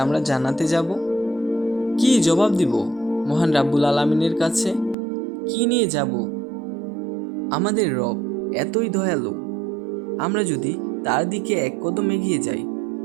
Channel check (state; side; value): drops out; left; at 5.0 s